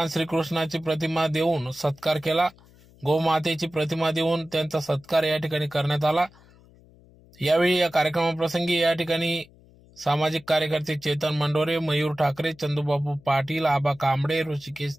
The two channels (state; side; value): noise; left; hum, 26 dB below the sound